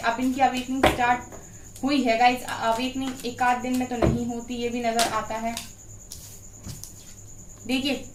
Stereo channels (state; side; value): identical; both; correlation 1.00